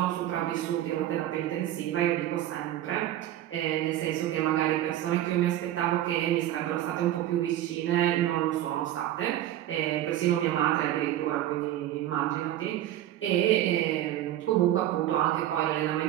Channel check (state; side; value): quieter; left; 13.1 dB